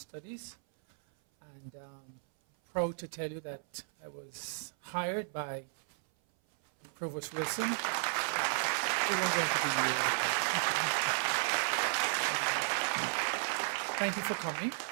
And proud to tell you that I was hired by Provost Wilson. Thank you for coming.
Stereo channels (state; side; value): silent; left; 55 dB below the other